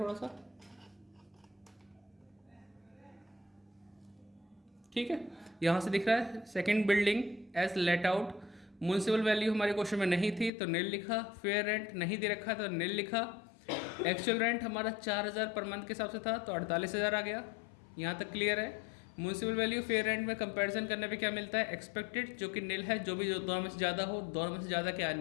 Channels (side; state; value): right; drops out; at 10.5 s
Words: सा, ठीक है। यहाँ से दिख रहा है second building as let out. Municipal value हमारे क्वेश्चन में नहीं थी तो निल लिखा। फेयर रेंट नहीं दे रखा तो निल लिखा। एक्चुअल रेंट हमारा 4,000 पर मंथ के हिसाब से था तो 48,000 आ गया। यहाँ तक क्लियर है। म्यूनसिपल वैल्यू फेयर रेंट में कंपैरिजन करने पे क्या मिलता है, एक्सपेक्टेड, जो कि निल है। जो भी दोनों में से ज़्यादा हो, दोनों में से ज़्यादा क्या